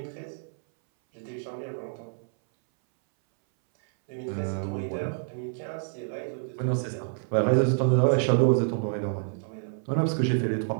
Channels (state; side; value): silent; left; 59 dB below the other